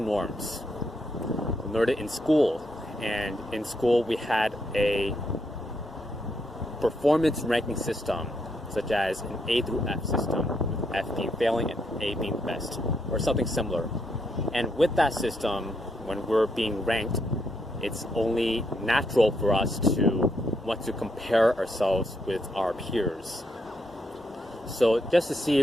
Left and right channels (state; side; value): normal; both; correlation 0.78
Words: norms? We learned it in school, and in school we had a performance ranking system, such as an A through F system, with F being failing and A being the best, or something similar. And with that system, when we're being ranked, it's only natural for us to want to compare ourselves with our peers. So just to